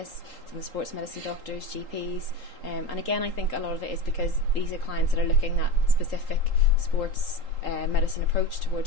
some of the sports medicine doctors, GPs, and again, I think a lot of it is because these are clients that are looking at specific sports medicine approach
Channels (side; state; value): right; late; 3.8 ms